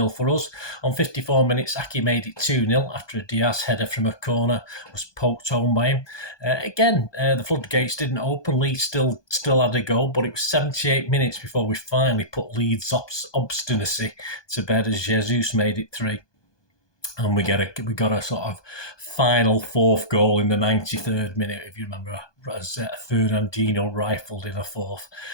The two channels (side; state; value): right; late; 1.2 ms